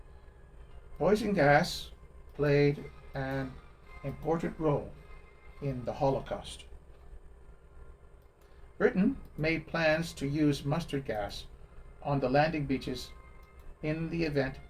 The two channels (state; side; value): identical; both; correlation 1.00